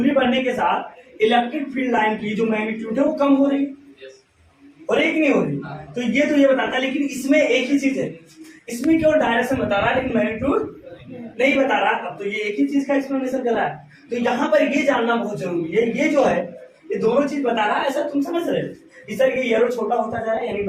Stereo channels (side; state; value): both; identical; correlation 1.00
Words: के साथ इलेक्ट्रिक फील्ड लाइन की जो मैग्नीट्यूड है वो कम हो रही और एक नहीं हो रही। तो ये बताता है, लेकिन इसमें एक ही चीज है, इसमें केवल डायरेक्शन बता रहा है लेकिन मैग्नीट्यूड नहीं बता रहा। अब तो ये एक ही चीज का एक्सप्लेनेशन कर रहा है, तो यहाँ पर ये जानना बहुत जरूरी है। ये जो है ये दोनों चीज बता रहा है, ऐसा तुम समझ रहे हो, इस तरह ये एरो छोटा होता जा रहा है यानी